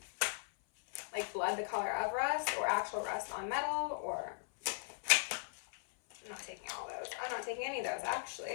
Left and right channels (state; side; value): silent; right; 52 dB below the other